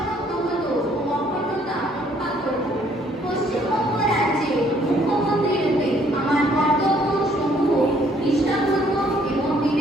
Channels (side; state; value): both; normal; correlation 0.64